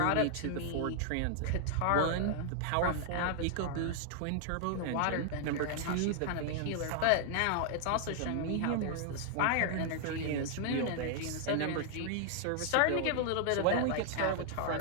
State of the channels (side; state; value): both; different; correlation 0.00